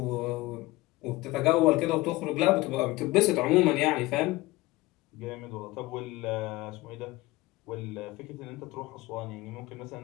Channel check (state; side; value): quieter; right; 19.8 dB